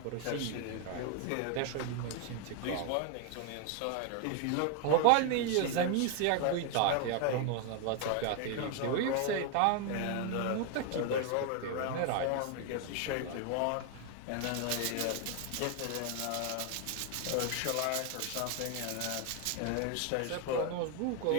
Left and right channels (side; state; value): both; different; correlation 0.00